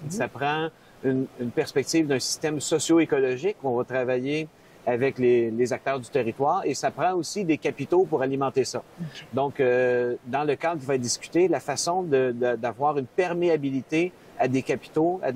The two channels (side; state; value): both; identical; correlation 1.00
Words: ça prend une perspective d'un système socio-écologique où on va travailler avec les acteurs du territoire, et ça prend aussi des capitaux pour alimenter ça. Donc, dans le cadre qui va être discuté, la façon d'avoir une perméabilité à des capitaux, à